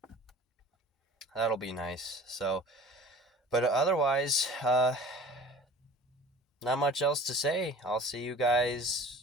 nice. So, but otherwise, not much else to say. I'll see you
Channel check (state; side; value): normal; both; correlation 0.43